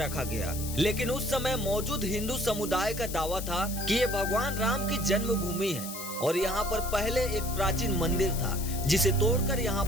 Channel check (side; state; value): left; noise; hiss, 9 dB below the sound